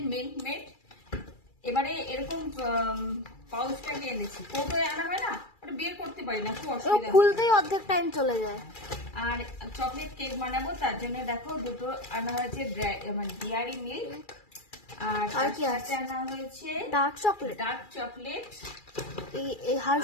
মিল্ক মেড। এবারে এরকম পাউচটাকে এনেছি, কৌটোয় আনা হয় না, ওটা বের করতে পারি না, খুব অসুবিধা। খুলতেই অর্ধেক টাইম চলে যায়। আর চকলেট কেক বানাবো, তার জন্য দেখো দুটো আনা হয়েছে ডেয়ারি মিল্ক, আর কি আছে আনা হয়েছে ডার্ক চকলেট এই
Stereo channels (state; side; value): late; right; 2.3 ms